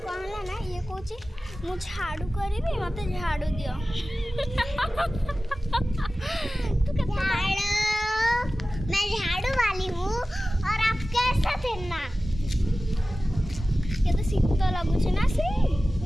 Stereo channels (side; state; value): both; normal; correlation 0.96